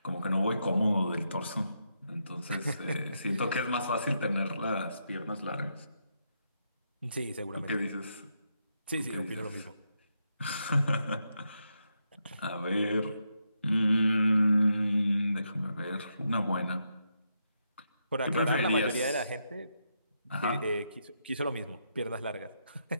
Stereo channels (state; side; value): inverted; both; correlation -0.81